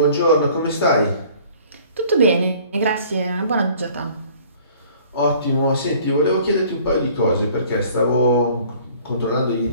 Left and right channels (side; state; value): both; inverted; correlation -0.53